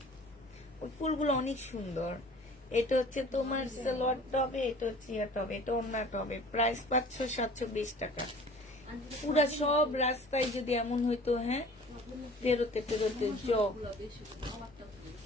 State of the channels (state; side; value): normal; both; correlation 0.47